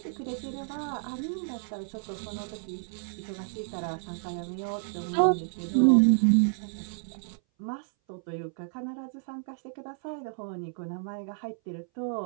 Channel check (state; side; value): silent; left; 58 dB below the other